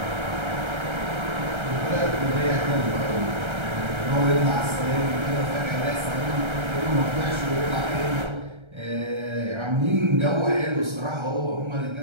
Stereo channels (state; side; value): late; left; 1.3 ms